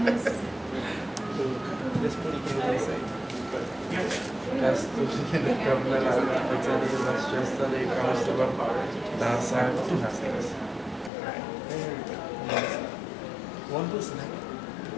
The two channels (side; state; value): right; drops out; at 11.1 s